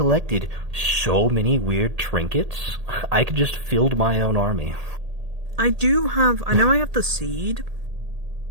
so many weird trinkets, I could just field my own army. I know I have the seed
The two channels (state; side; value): late; left; 1.8 ms